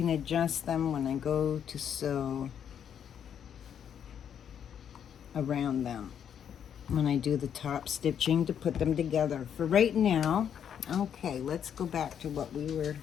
adjust them when I go to sew around them when I do the top stitching to put them together. For right now, okay, let's go back to what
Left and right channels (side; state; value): right; quieter; 8.6 dB